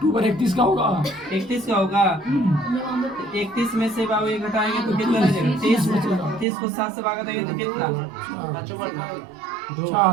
31 का होगा। 31 का होगा। 31 में से बाबू ये घटाएंगे तो कितना रह जाएगा? 30 को 7 से भागा देंगे तो कितना?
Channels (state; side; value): drops out; left; at 6.5 s